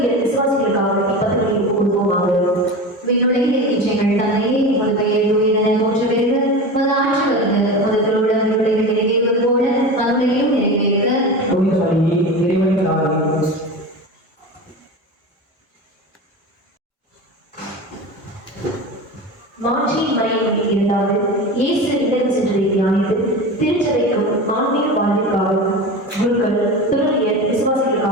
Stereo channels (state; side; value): normal; both; correlation 0.28